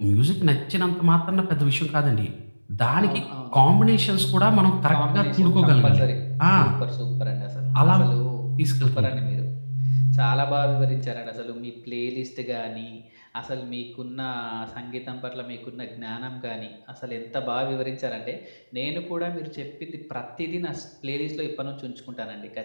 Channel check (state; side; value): inverted; both; correlation -1.00